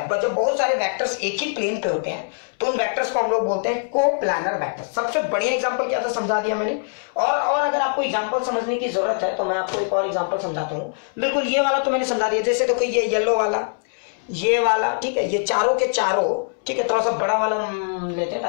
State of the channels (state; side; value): silent; right; 64 dB below the other